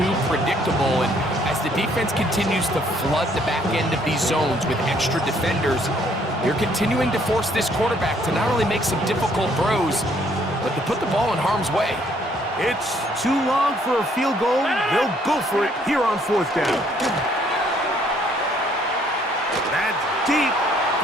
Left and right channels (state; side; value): normal; both; correlation 0.65